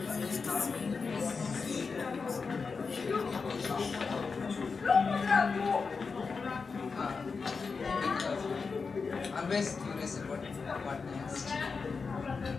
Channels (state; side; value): quieter; right; 4.9 dB